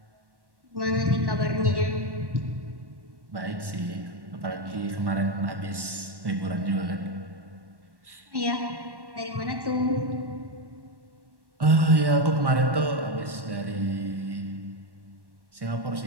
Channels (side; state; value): left; late; 1.1 ms